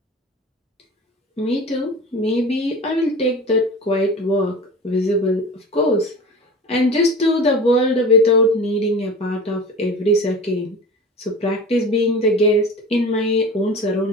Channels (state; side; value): normal; both; correlation 0.35